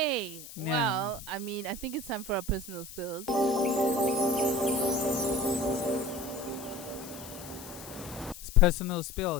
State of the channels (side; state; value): left; noise; hiss, 14 dB below the sound